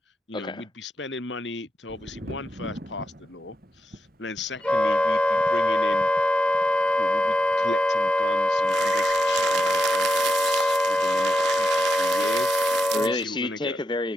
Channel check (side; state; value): both; normal; correlation 0.85